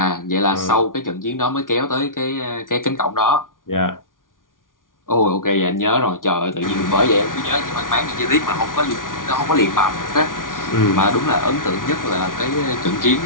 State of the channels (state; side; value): late; right; 0.89 ms